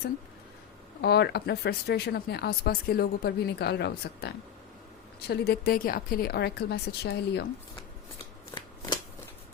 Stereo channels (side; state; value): right; quieter; 9.3 dB